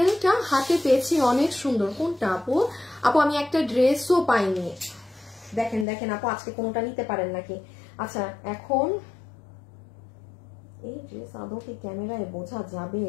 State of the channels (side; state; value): right; drops out; at 5.9 s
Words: হাতে পেয়েছি, অনেক সুন্দর। কোনটা আপু? আপু আমি একটা ড্রেসও পাইনি, দেখেন দেখেন আপু আজকে কোনোটা নিতে পারেন নাকি। আচ্ছা এখন এই ড্রেস আদৌ কি ক্যামেরায় বোঝা যাবে?